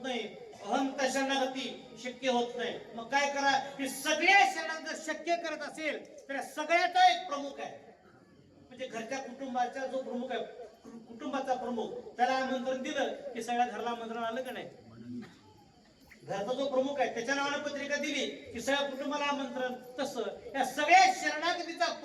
नाही. अहंता शरणागती शक्य होत नाही. मग काय करा? की सगळ्या शरणागत शक्य करत असेल तर सगळ्याचा एक प्रमुख आहे. म्हणजे घरच्या कुटुंबाचा जो प्रमुख आहे, कुटुंबाचा प्रमुख, त्याला आमंत्रण दिलं की सगळ्या घराला आमंत्रण आलं का नाही? घरचा जो प्रमुख आहे त्याच्या नावाने पत्रिका दिली की सगळ्या कुटुंबाला आमंत्रण. तसं या सगळ्या शरणागतीचा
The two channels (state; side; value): identical; both; correlation 1.00